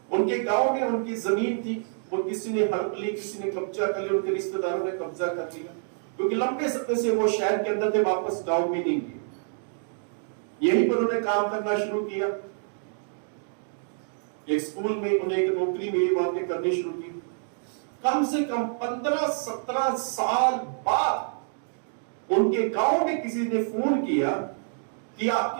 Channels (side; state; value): left; silent; digital silence